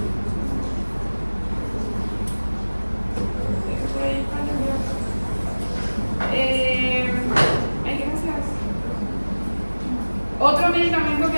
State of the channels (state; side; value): inverted; both; correlation -1.00